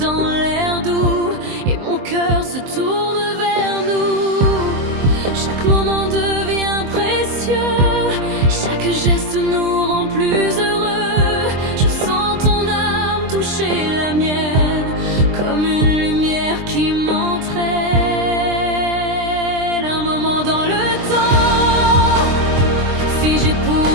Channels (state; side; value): late; left; 23 ms